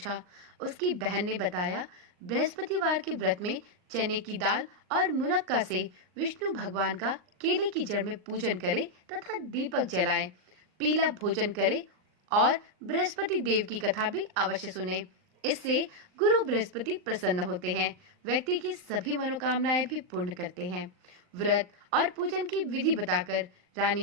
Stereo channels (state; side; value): late; left; 39 ms